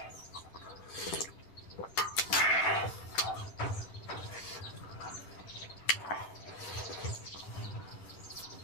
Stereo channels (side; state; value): right; late; 10 ms